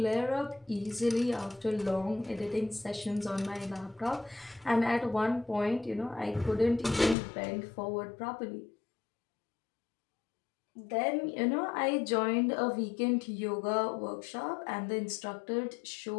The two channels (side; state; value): right; drops out; at 7.2 s